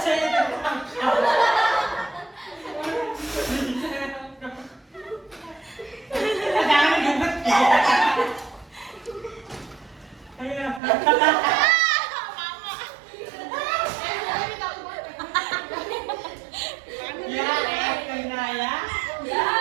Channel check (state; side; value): drops out; left; at 10.8 s